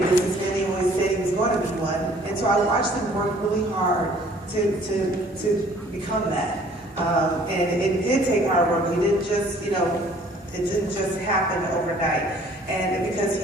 businessman. He always said he was going to be one, and so I watched him work really hard to become that. And it did take hard work. He didn't just, it didn't just happen overnight. And because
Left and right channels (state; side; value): normal; both; correlation 0.56